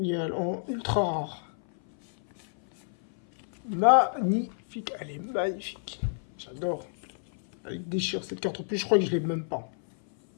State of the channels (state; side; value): silent; right; 56 dB below the other